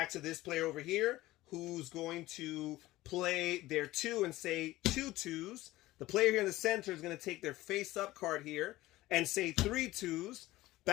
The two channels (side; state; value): right; quieter; 17.4 dB